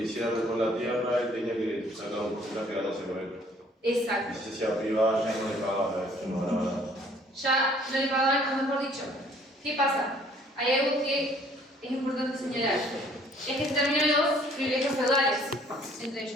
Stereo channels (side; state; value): both; normal; correlation 0.58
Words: hiciera con la tierra, él tenía que sacar un porcentaje de ganárselo a él. Exacto. Y si se hacía privada, ya no le pagaba, no ganaba nada. Ya no le pagaban, o mejor dicho. ¿Qué pasa? Hay algo que es importante señalar. Es que se terminan los privilegios feudales entre